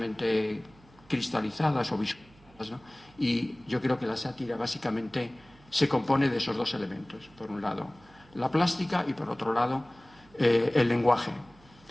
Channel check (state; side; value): noise; right; hum, 27 dB below the sound